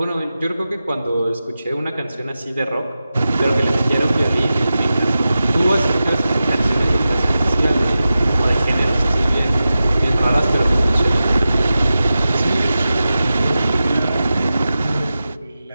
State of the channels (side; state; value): both; inverted; correlation -0.93